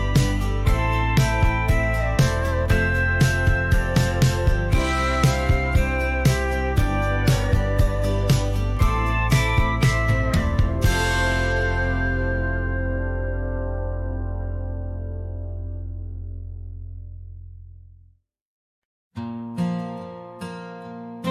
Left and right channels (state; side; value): identical; both; correlation 1.00